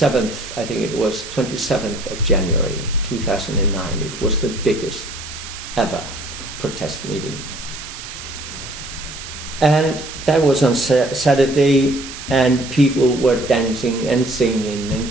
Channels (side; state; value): right; noise; hiss, 11 dB below the sound